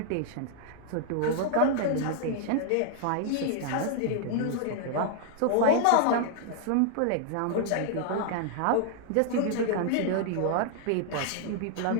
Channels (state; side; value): different; both; correlation 0.00